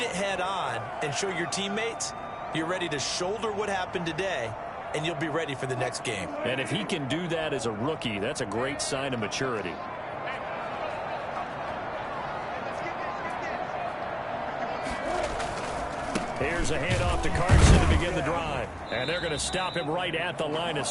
it head-on, and show your teammates you're ready to shoulder what happened today, and you'll be ready for the next game. And if he can do that as a rookie, that's a great sign of maturity. Here's a handoff to Carson to begin the drive. And they're going to stop him right at the line of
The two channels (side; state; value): both; identical; correlation 1.00